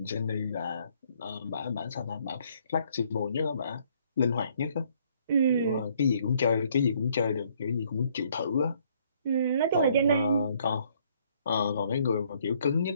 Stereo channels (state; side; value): inverted; both; correlation -0.65